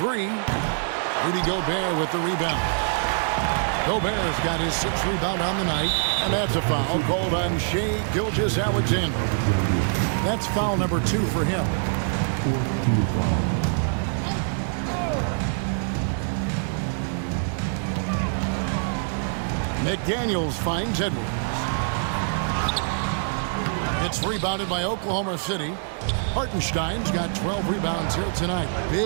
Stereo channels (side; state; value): left; silent; 57 dB below the other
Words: Rudy Gobert with the rebound. Gobert's got his 6th rebound on the night, and that's a foul called on Shai Gilgeous-Alexander. That's foul number 2 for him. McDaniels finds Edwards. It's rebounded by Oklahoma City. Hartenstein's got 12 rebounds here tonight.